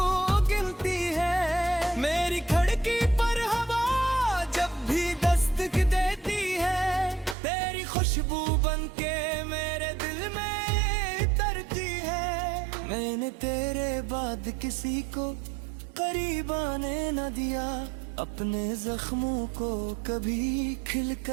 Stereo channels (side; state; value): left; drops out; at 7.4 s